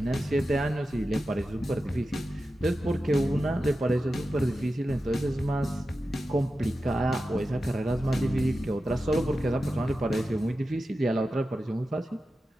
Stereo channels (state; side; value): normal; both; correlation 0.92